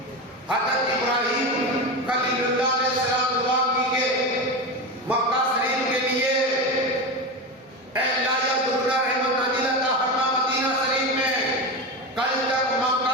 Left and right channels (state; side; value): normal; both; correlation 0.20